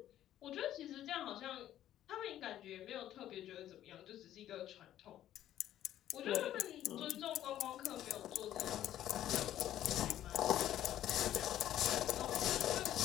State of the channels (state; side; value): quieter; right; 12.2 dB